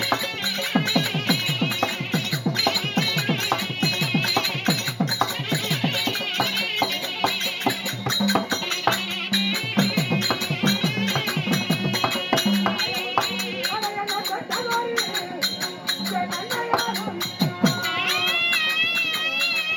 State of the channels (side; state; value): both; identical; correlation 1.00